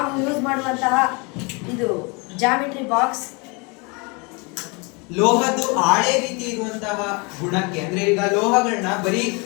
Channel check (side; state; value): right; quieter; 29.9 dB